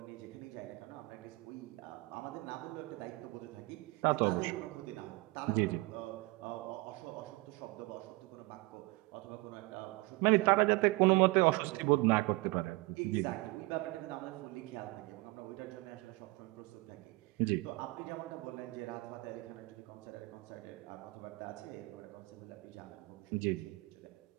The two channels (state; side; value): quieter; left; 23.5 dB